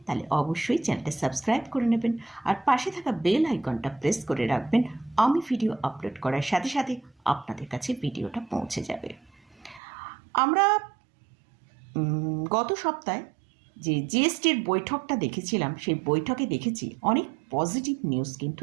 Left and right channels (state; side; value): drops out; left; at 9.8 s